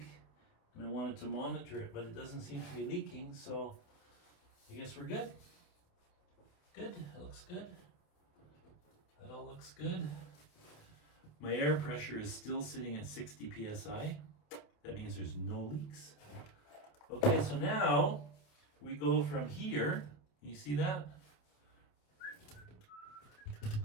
and I wanted to monitor it, but it doesn't seem to be leaking, so I guess we're good. Good, that looks good. That all looks good. My air pressure is still sitting at 60 psi. That means there's no leaks. Okay, so now we go from here. You see that?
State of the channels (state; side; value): late; right; 27 ms